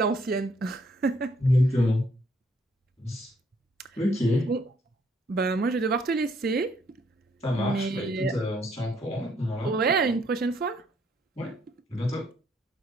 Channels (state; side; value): normal; both; correlation 0.68